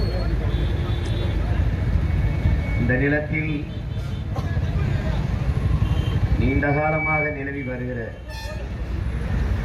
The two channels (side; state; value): both; identical; correlation 1.00